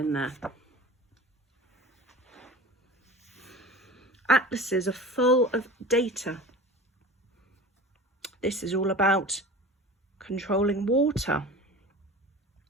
there. Atlases are full of data. This is all about controlling water.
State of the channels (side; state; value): both; normal; correlation 0.37